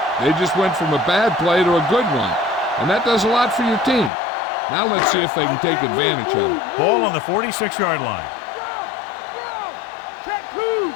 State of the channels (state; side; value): drops out; right; at 4.1 s